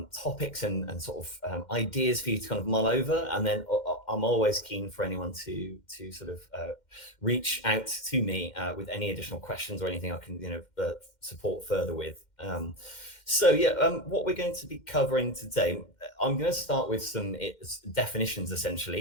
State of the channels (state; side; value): late; right; 2.1 ms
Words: topics and sort of ideas for you to kind of mull over. And then I'm always keen for anyone to sort of reach out to me with any additional questions or anything I can, support further with. What we're going to be covering today, I'm going to start with some definitions